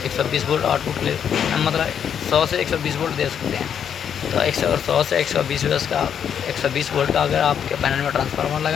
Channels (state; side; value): quieter; right; 8.3 dB